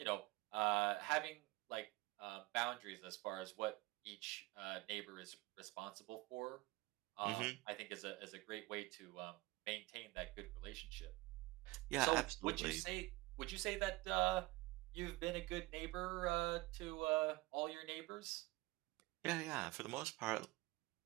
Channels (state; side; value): quieter; left; 21.1 dB